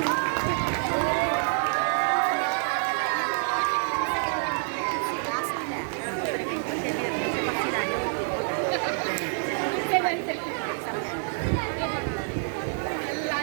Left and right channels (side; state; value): left; silent; digital silence